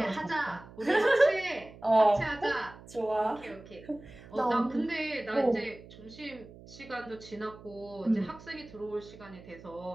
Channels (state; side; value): noise; right; hum, 19 dB below the sound